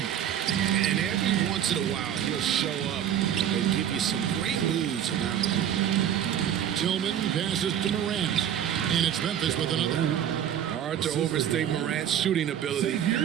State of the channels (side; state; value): left; quieter; 9.8 dB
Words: And every once in a while, he'll show up and give you some great moves around the hoop. Tillman passes to Morant. And it's Memphis with another. Hard to overstate Morant's shooting ability.